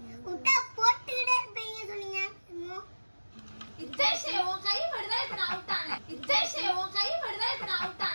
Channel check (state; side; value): inverted; both; correlation -1.00